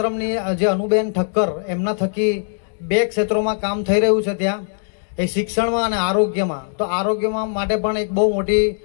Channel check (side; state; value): right; silent; digital silence